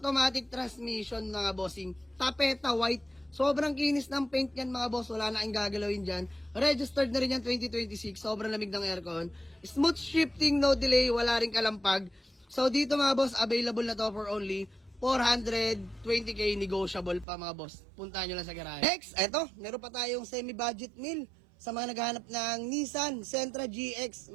transmission mga bossing. Tapeta white. Sobrang kinis ng paint yan mga boss. Wala na kayong gagalawin dyan. Registered na rin yan 2026. Sobrang lamig ng aircon. Smooth shifting, no delay. Wala rin kalampag. So dito mga boss, available na to for only 420k, negotiable pa mga boss. Puntahan nyo lang sa garahe. Next, eto. Meron pa tayong semi-budget meal. Sa mga naghahanap ng Nissan Sentra GX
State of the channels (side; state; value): left; drops out; at 17.2 s